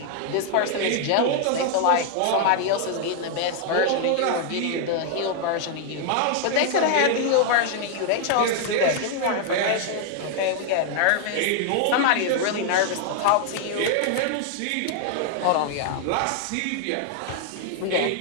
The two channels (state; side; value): different; both; correlation 0.00